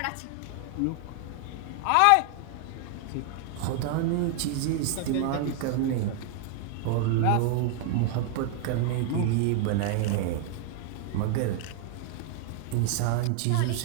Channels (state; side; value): different; both; correlation 0.00